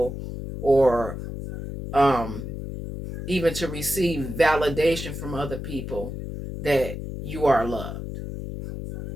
or um, even to receive validation from other people that you are loved.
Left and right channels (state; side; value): noise; left; hum, 7 dB below the sound